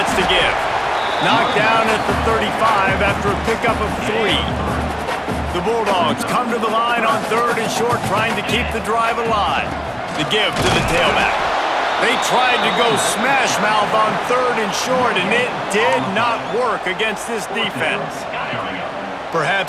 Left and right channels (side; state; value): both; identical; correlation 1.00